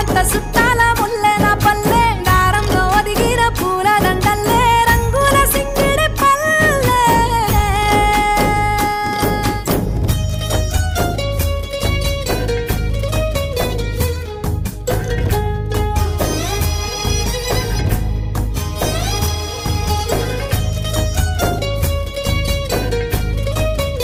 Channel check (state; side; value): identical; both; correlation 1.00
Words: సుట్టాల ముల్లె నా పల్లె దారంలో ఒదిగిన పూల దండల్లే రంగుల సింగిడి పల్లె